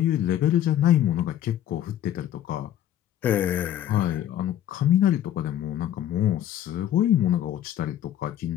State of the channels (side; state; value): right; quieter; 11.6 dB